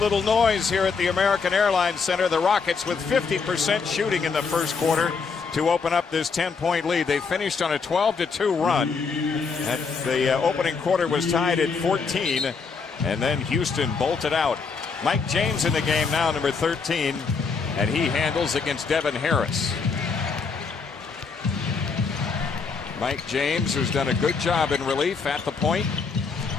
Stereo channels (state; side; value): quieter; right; 5.1 dB